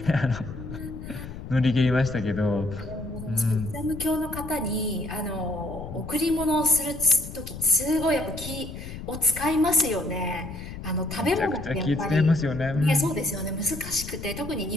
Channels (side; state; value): left; noise; rumble, 10 dB below the sound